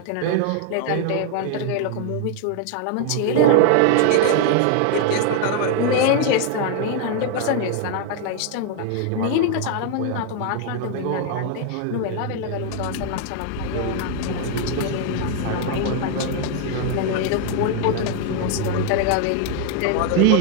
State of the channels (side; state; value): both; different; correlation 0.00